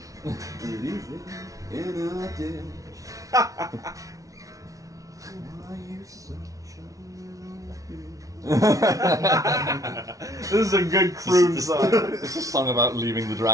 Leave him in a ditch. Why you such a little bitch? This is a good croon song. It's a song about leaving the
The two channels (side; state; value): left; late; 0.17 ms